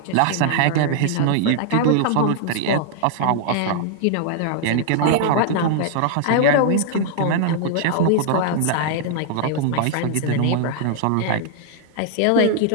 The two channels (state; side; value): different; both; correlation -0.01